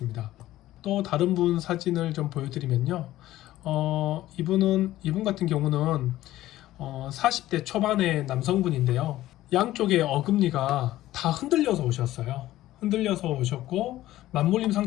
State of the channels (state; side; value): quieter; right; 15.0 dB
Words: 또 다른 분 사진을 좀 보여드리면요, 이분 같은 경우는 40대 초반의 남성분인데요, 양쪽의 어금니가 다 흔들려서 오셨어요. 흔들려서 오셨고, 맞물림